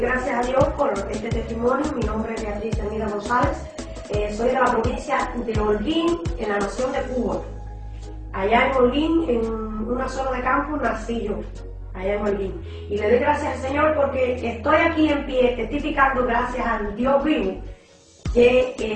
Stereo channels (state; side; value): identical; both; correlation 1.00